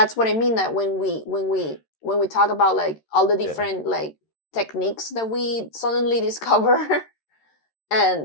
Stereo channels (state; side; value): late; right; 13 ms